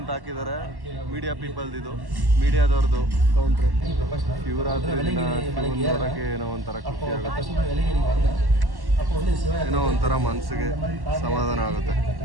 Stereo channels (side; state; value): left; late; 1.1 ms